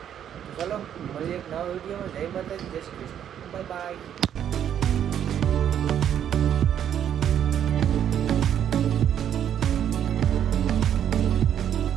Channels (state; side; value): quieter; left; 9.6 dB